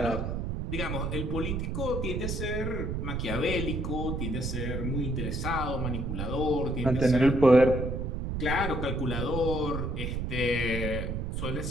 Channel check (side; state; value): right; noise; rumble, 2 dB below the sound